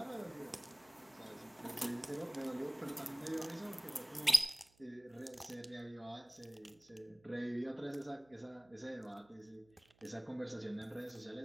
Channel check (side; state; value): right; noise; hum, 30 dB below the sound